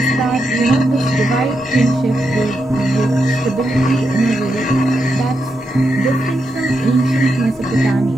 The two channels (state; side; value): normal; both; correlation 0.84